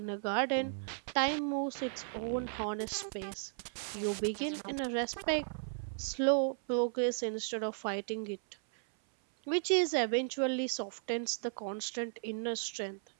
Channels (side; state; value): left; silent; 54 dB below the other